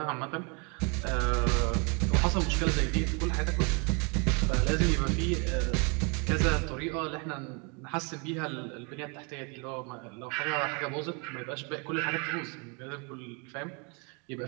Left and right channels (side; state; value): left; quieter; 33.1 dB